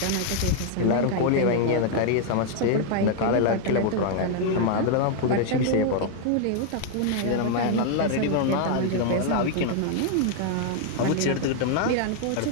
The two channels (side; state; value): both; different; correlation 0.00